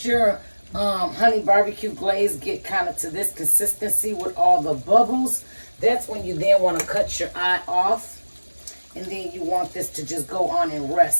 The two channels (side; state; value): both; inverted; correlation -1.00